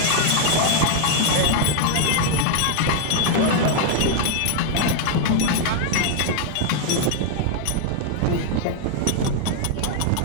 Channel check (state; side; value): different; both; correlation 0.00